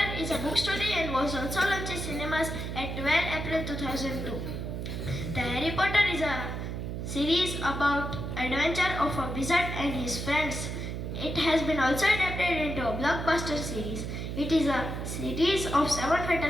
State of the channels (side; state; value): right; noise; hum, 5 dB below the sound